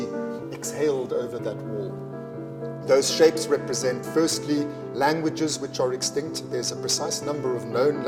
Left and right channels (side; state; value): both; identical; correlation 1.00